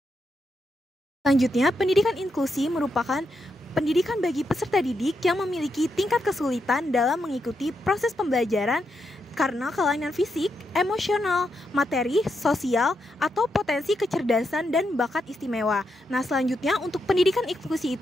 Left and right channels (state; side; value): normal; both; correlation 0.82